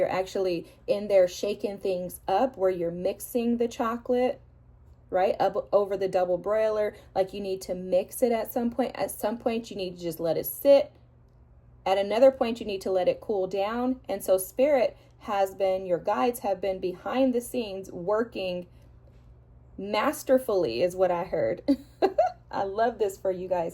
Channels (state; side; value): identical; both; correlation 1.00